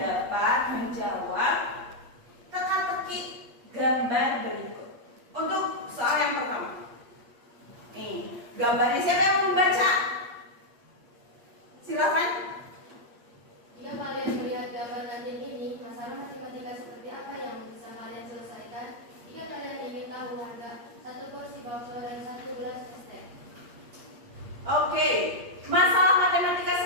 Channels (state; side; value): late; left; 8.5 ms